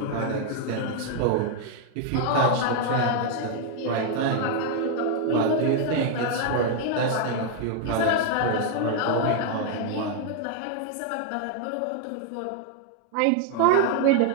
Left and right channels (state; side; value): different; both; correlation 0.00